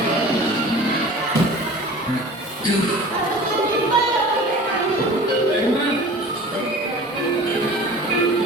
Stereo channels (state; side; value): normal; both; correlation 0.41